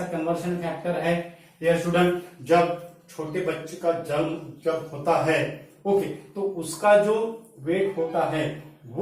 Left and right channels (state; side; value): identical; both; correlation 1.00